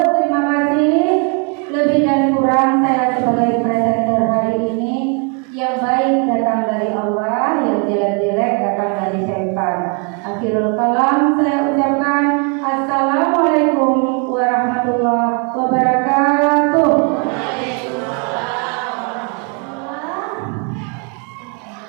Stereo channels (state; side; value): quieter; left; 36.9 dB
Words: kasih. Lebih dan kurang saya sebagai presenter hari ini, yang baik datang dari Allah, yang jelek-jelek datang dari syaitan. Akhirul kalam saya ucapkan Assalamualaikum warahmatullahi wabarakatuh.